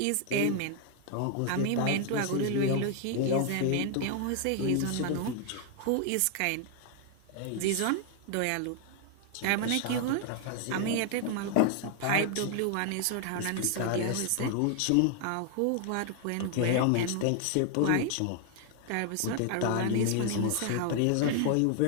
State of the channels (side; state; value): both; different; correlation 0.00